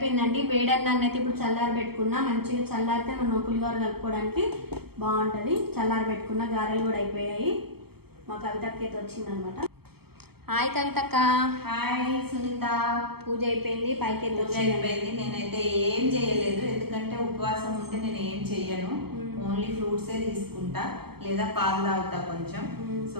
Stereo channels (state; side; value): late; left; 0.96 ms